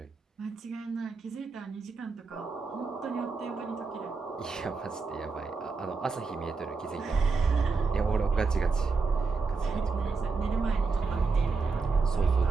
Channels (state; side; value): quieter; left; 4.6 dB